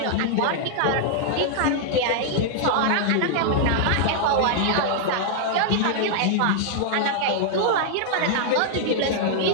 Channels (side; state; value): both; different; correlation -0.01